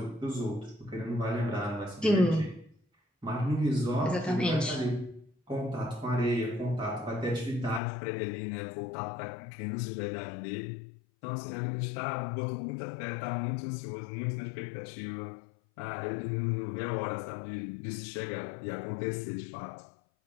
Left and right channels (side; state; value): right; drops out; at 7.8 s